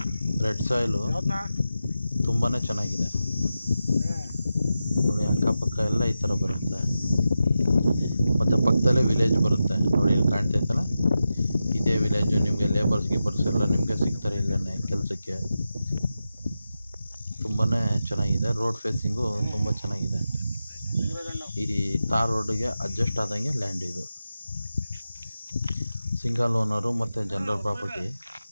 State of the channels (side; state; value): both; inverted; correlation -0.91